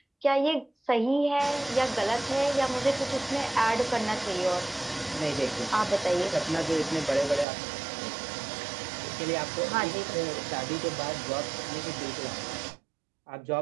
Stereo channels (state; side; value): drops out; left; at 7.5 s